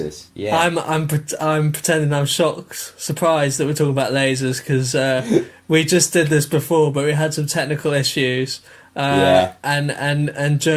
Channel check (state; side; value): identical; both; correlation 1.00